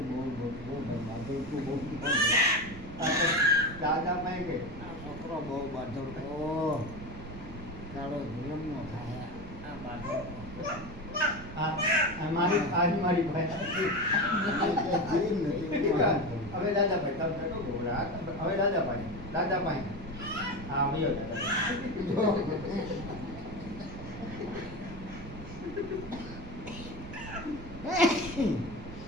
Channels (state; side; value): noise; right; rumble, 13 dB below the sound